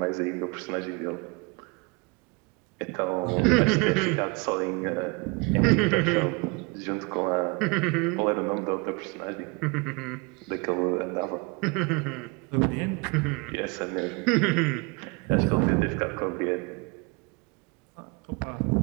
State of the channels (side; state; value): left; quieter; 29.1 dB